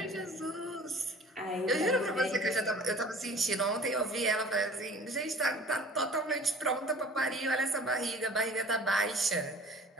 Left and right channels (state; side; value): normal; both; correlation 0.46